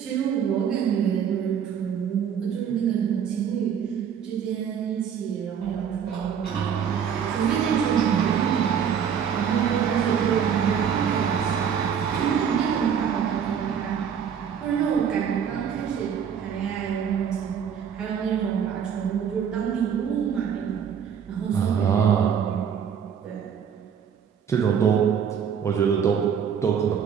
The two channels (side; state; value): left; quieter; 7.8 dB